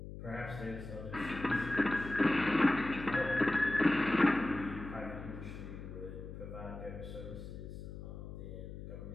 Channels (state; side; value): noise; left; hum, 10 dB below the sound